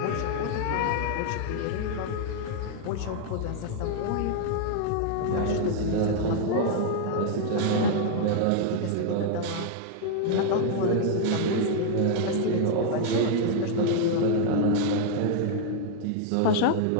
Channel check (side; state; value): both; different; correlation 0.00